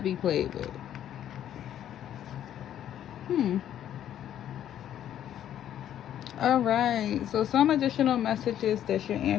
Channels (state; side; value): quieter; right; 10.8 dB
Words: be played with. Alright, so some additional messages that your